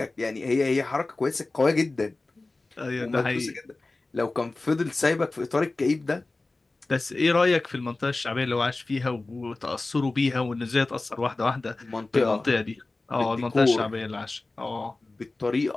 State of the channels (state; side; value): quieter; right; 3.2 dB